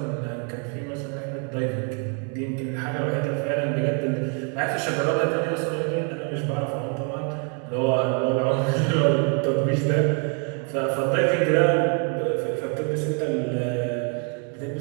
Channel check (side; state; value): left; quieter; 39.4 dB